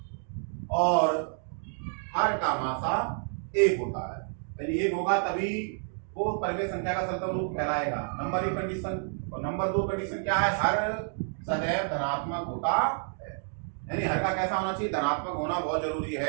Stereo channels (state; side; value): silent; left; 56 dB below the other